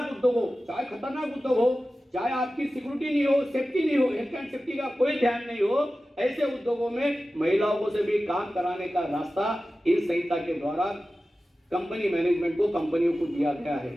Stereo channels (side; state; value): both; normal; correlation 0.95